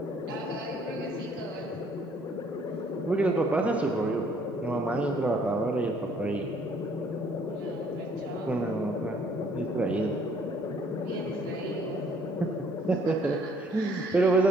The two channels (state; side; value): normal; both; correlation 0.62